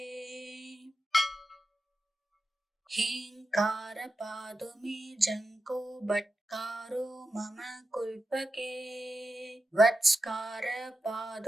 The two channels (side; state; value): both; normal; correlation 0.90